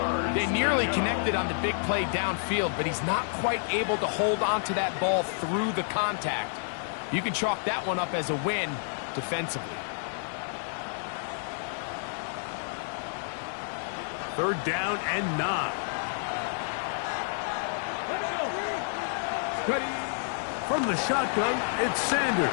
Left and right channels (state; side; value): silent; right; 58 dB below the other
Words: They nearly connected on the big play downfield, but he's not quite able to hold on to that ball through the contact. You can chalk that one up as a win defensively. Third down and 9. From the shotgun, it's